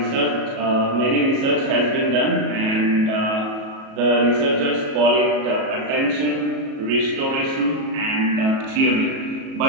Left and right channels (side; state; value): left; late; 37 ms